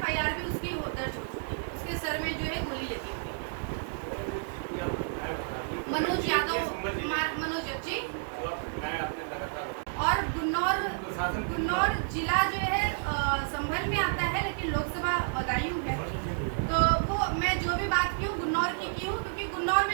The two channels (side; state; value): left; silent; digital silence